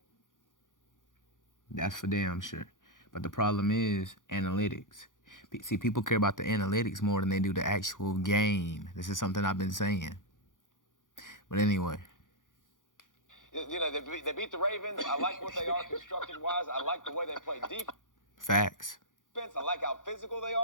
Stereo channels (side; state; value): right; late; 0.88 ms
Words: That's for damn sure. But the problem is analytics. See, people care about the analytics more than they do the actual game. This is something I've been saying. But anyway. They beat the Ravens. I like what they are constructed-wise. I like the way they play defense. Facts. I like how physical they